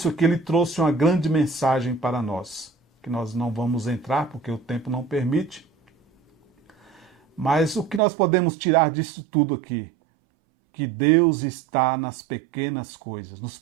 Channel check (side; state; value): left; drops out; at 8.0 s